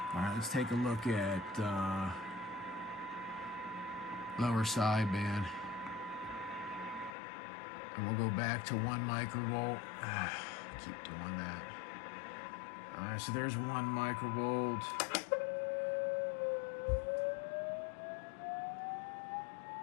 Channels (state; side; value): drops out; right; at 7.2 s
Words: All right, let's take a look at lower sideband. And we'll go back to 1 microvolt. Keep doing that. All right, so there's 1 microvolt.